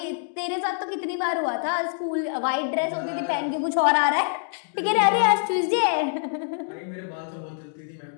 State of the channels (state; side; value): silent; right; digital silence